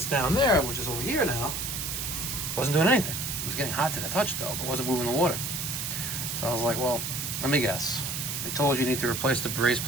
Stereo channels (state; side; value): noise; right; hiss, 3 dB below the sound